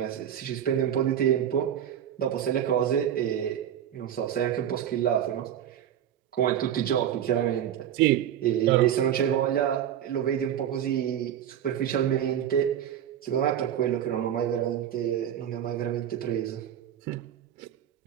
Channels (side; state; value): left; quieter; 10.2 dB